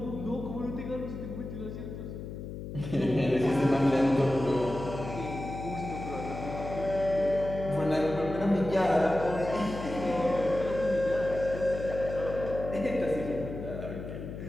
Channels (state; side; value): noise; left; hum, 8 dB below the sound